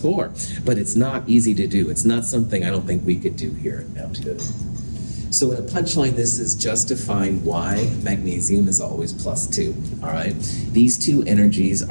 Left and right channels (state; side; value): inverted; both; correlation -1.00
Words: but it's not easy to do. It's not something I don't think we could do here at Mount Hood. So in a punchline, this is just to find why magnesium is always +2, all right? These two energies